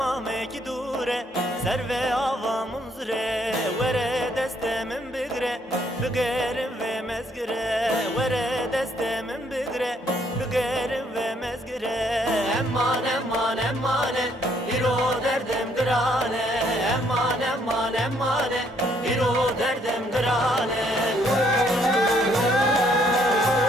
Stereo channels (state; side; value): normal; both; correlation 0.68